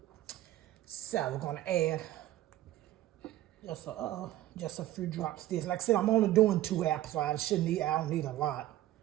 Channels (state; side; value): quieter; left; 14.4 dB